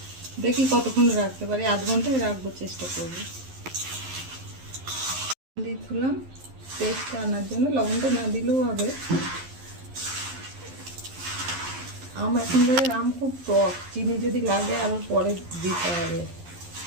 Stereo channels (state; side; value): late; left; 11 ms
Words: দেখি কতক্ষণ রাখতে পারি, আধ ঘন্টায় রাখবো, চেষ্টা করবো। দিয়ে তুলাম টেস্টটা আনার জন্য, লবণটা না দিলেও হবে। আম এখনকার আম খুব টক, চিনি যদি লাগে আবার পরে দিতে হবে।